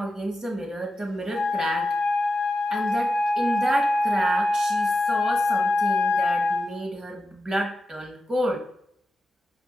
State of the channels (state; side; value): normal; both; correlation 0.91